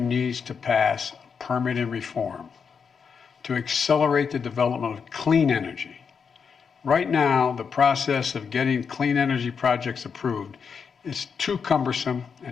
to pass permitting reform to accelerate the development of clean energy. Right now, the process of getting clean energy projects approved is too cumbersome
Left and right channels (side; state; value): right; quieter; 6.2 dB